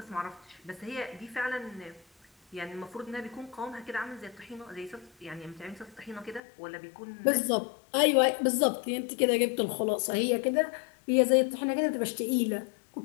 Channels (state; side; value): drops out; right; at 6.4 s